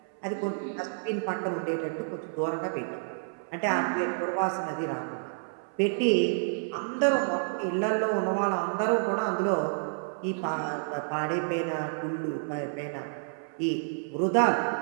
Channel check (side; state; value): left; silent; 58 dB below the other